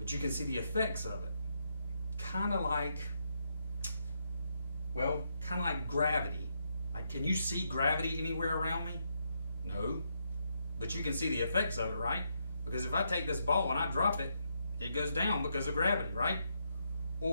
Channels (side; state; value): both; inverted; correlation -0.79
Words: you can see the effects of it. Kind of like gravity. Like, can you see gravity anywhere around me? No. But you can see the effects of it, right? Because if I take this ball and I drop it, it goes down because of gravity, right?